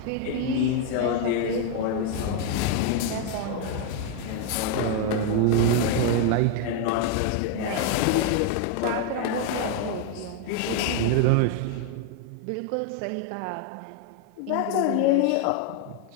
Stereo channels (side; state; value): both; different; correlation 0.01